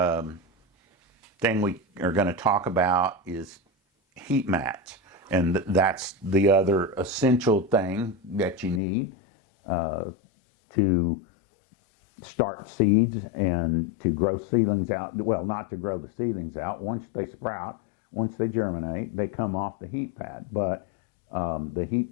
thing we are going to talk about is heat mats, and that's the other essential thing that you need to start seeds and to grow seedlings out. Well, not to grow the seedlings out. Once they sprout, once they germinate, they come off the heat pad. But the heat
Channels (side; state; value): right; drops out; at 8.8 s